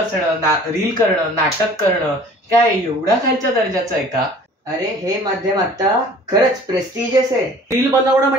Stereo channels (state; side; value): normal; both; correlation 0.48